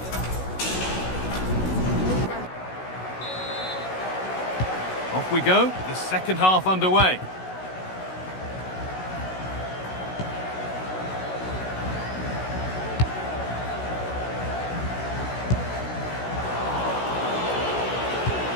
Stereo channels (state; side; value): late; right; 16 ms